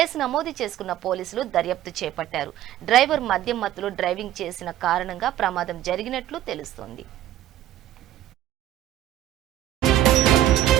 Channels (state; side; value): quieter; left; 12.9 dB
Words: నమోదు చేసుకున్న పోలీసులు దర్యాప్తు చేపట్టారు. డ్రైవర్ మద్యం మత్తులో డ్రైవింగ్ చేసిన కారణంగా ప్రమాదం జరిగినట్లు తెలుస్తోంది.